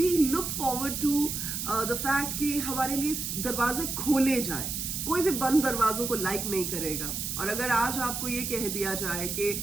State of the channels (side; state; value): right; noise; hiss, 3 dB below the sound